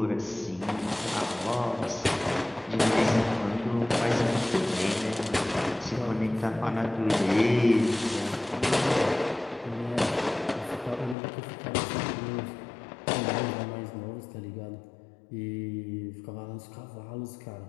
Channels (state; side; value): drops out; right; at 11.2 s